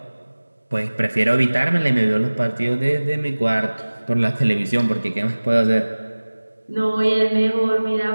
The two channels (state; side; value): inverted; both; correlation -1.00